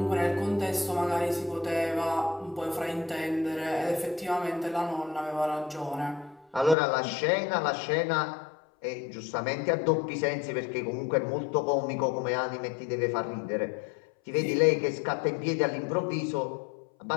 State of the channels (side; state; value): right; drops out; at 6.8 s